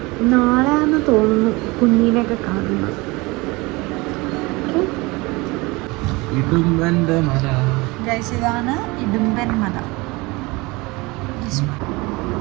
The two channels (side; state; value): left; quieter; 23.9 dB